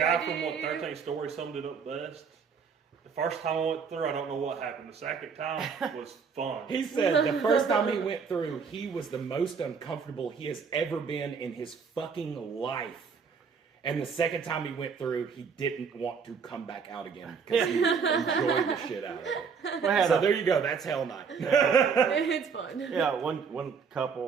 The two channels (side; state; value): left; quieter; 5.9 dB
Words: guy ID from What in you. 13 Story summed it up best. The first time I went through, I don't know what happened. The second time was fun. He said the first time he went through, he was the most uncomfortable he has ever been in his fucking life. And the second time he went through, he didn't want to come back out again because he enjoyed the shit out of it. So there you go. That's Hell Night. It's fun. Yeah, one